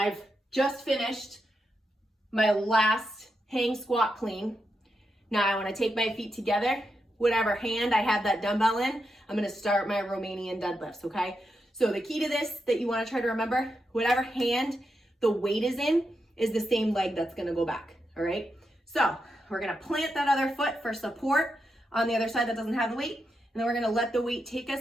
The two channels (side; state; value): both; normal; correlation 0.85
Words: just finished my last hang squat clean. Now I wanna take my feet together, whatever hand I have that dumbbell in, I'm gonna start my Romanian deadlifts, okay? So the key to this that you wanna try to remember, whatever hand the weight is in is the same leg that's gonna go back, all right? So we're gonna plant that other foot for support on the other side that doesn't have the weight, and then we're gonna let the weight take